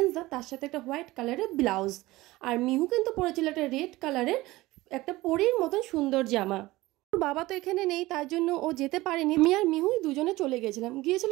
তার সাথে একটা হোয়াইট কালারের ব্লাউজ। আর মিহু কিন্তু পরেছিল একটা রেড কালারের একটা পরীর মতন সুন্দর জামা। ওর বাবা তো এখানে নেই, তার জন্য ও যেতে পারেনি। আমি আর মিহুই দুজনে চলে গিয়েছিলাম। গিয়েছিল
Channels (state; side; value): quieter; left; 19.0 dB